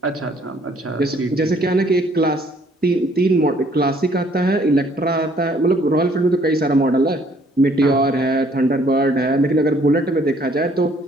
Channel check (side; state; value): both; normal; correlation 0.62